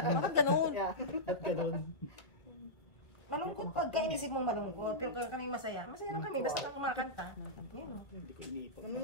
ganun? Yeah. Ba't ganun? Malungkot pag inisip mong malungkot. Pero kami masaya. Masaya lang kami. Basta lang kumakanta. Yun. Hindi ko iniipon. Ano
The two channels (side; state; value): right; late; 1.7 ms